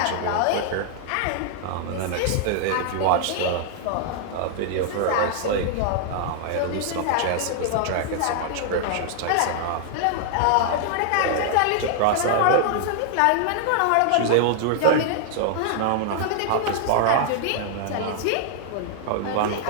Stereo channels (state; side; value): different; both; correlation -0.01